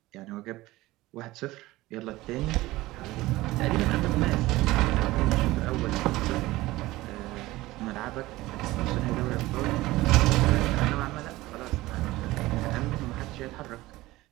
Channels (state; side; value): quieter; left; 18.4 dB